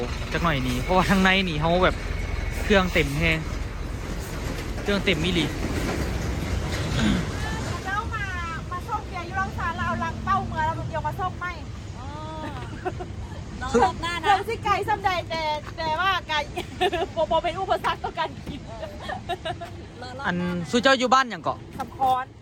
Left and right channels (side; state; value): both; identical; correlation 1.00